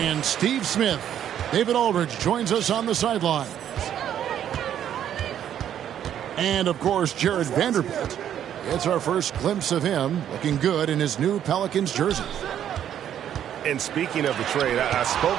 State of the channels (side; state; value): left; quieter; 10.1 dB